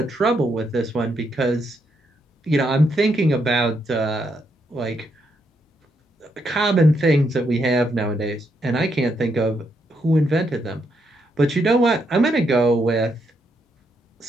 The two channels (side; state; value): both; normal; correlation 0.78